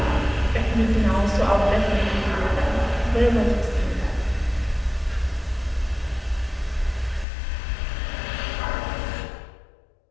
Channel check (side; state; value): right; drops out; at 7.2 s